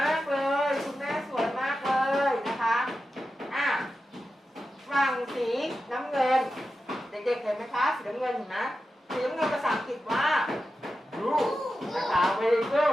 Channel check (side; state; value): both; normal; correlation 0.91